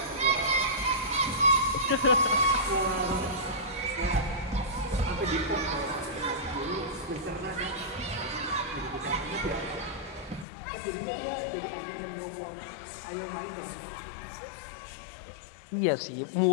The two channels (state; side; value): drops out; right; at 10.5 s